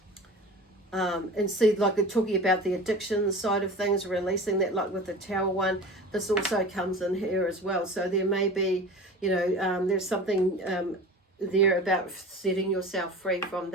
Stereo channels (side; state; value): both; normal; correlation 0.36